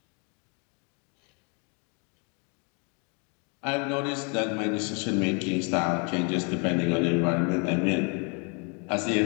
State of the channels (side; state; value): right; quieter; 35.4 dB